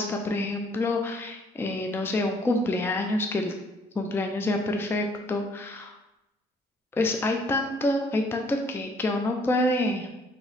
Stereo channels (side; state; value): both; normal; correlation 0.63